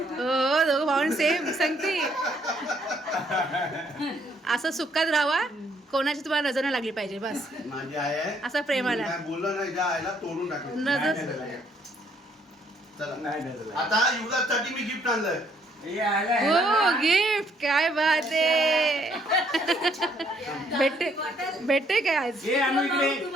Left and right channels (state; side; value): normal; both; correlation 0.68